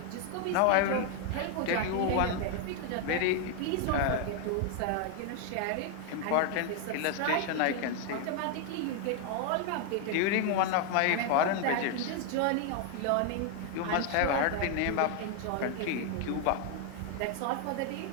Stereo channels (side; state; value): both; different; correlation 0.00